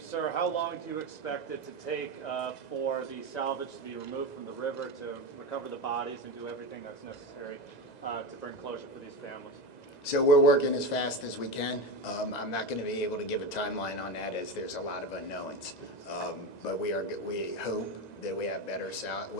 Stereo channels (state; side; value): late; right; 2.0 ms